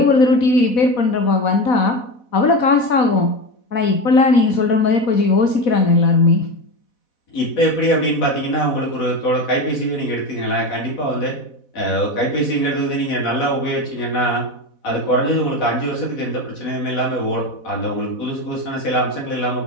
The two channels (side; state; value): right; late; 4.1 ms